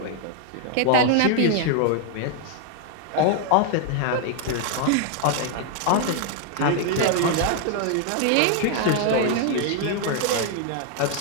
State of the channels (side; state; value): both; different; correlation 0.00